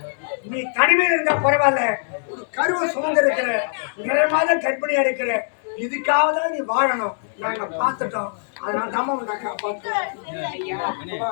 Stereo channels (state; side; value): silent; right; 64 dB below the other